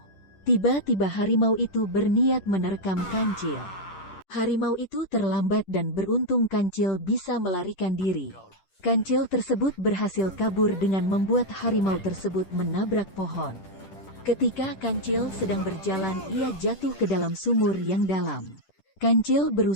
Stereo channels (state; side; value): late; right; 10 ms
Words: Tiba-tiba harimau itu berniat menerkam kancil. Harimau itu terlambat dan beruntung kancil bisa melarikan diri. Kancil tersebut berhasil kabur dengan membuat harimau tersebut menabrak pohon. Ketika kancil sedang berjalan, ia jatuh ke dalam sumur yang dalam. Kancil